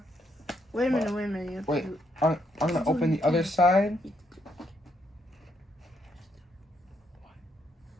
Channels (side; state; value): both; normal; correlation 0.75